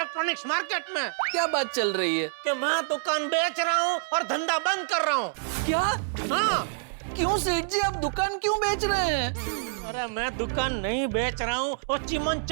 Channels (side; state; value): left; silent; 60 dB below the other